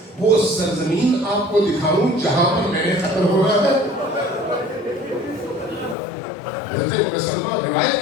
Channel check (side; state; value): right; drops out; at 6.0 s